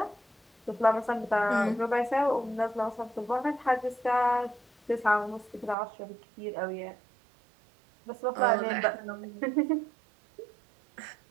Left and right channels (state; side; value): drops out; left; at 5.8 s